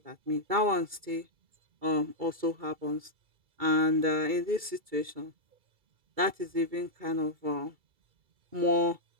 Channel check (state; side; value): late; left; 2.3 ms